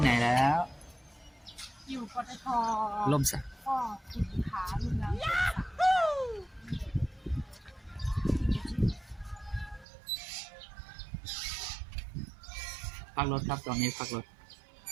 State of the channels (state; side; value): drops out; left; at 9.9 s